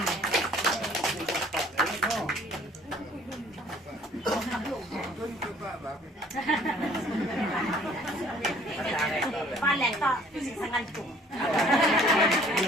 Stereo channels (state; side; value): normal; both; correlation 0.56